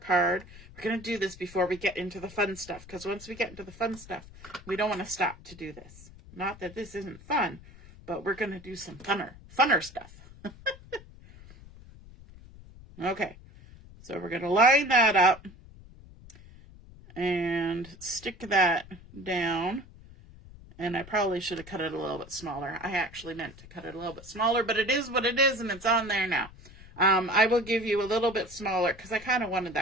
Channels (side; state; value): left; noise; rumble, 20 dB below the sound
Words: We're going to do this before we get into the fun stuff, because once we get into the fun stuff, we don't want to stop to do this. Not that this isn't fun, but we're going to do some funner stuff. Okay, so we're going to line that up and stick that down. And I probably should have cut it a little bit smaller. I actually meant to cut it a little bit smaller, but it is what it is, and it's on there now. I will give you a little bit smaller because I kind of wanted